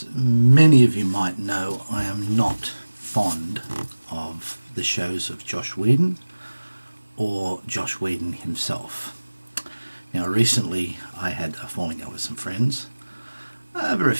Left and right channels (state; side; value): inverted; both; correlation -1.00